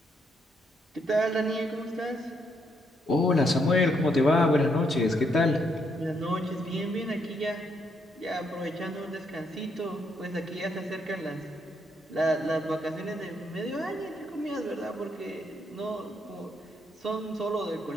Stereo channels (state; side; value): normal; both; correlation 0.75